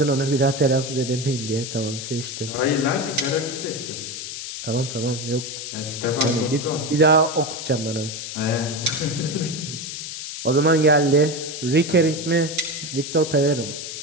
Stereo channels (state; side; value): noise; left; hiss, 7 dB below the sound